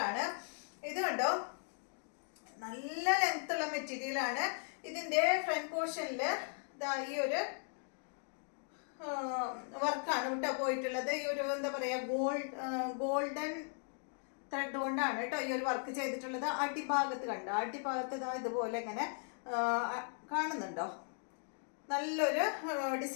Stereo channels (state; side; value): silent; right; 53 dB below the other